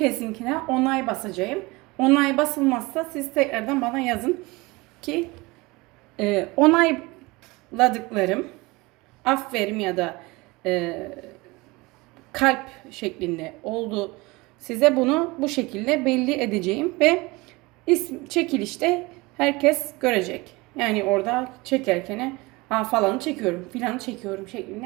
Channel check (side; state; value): left; quieter; 23.4 dB